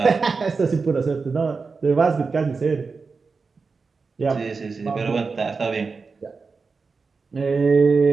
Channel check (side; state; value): left; quieter; 4.6 dB